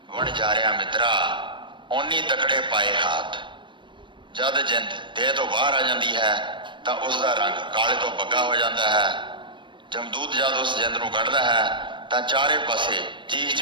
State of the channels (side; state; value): left; late; 0.23 ms